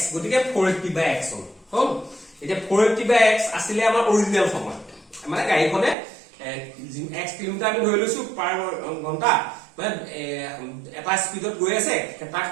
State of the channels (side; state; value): left; drops out; at 6.0 s